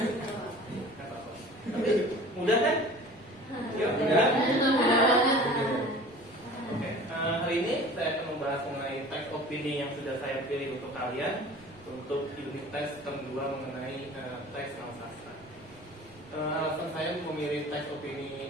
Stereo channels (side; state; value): right; noise; rumble, 25 dB below the sound